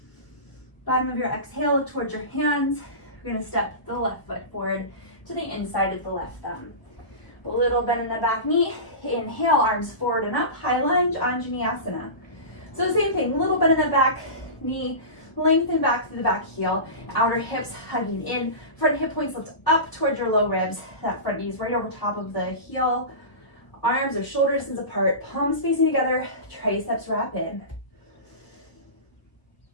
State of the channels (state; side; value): late; right; 1.2 ms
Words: Bottom of your exhale, look towards your hands. You're going to step the left foot forward to the inside of the left thumb. A little bend in the back knee. Inhale, arms forward and up, high lunge, Anjaneyasana. So the same thing, little bend in the back knee, lengthen back through the back heel, outer hips hugging in, front hip points lift up towards your low ribs, that front knee is right over top of the heel, arms are shoulder distance apart, palms facing together, triceps wrap in.